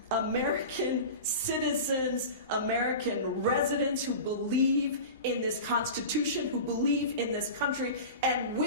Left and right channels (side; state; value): both; inverted; correlation -0.31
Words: American citizens, American residents who believe in this Constitution, who believe in this country, and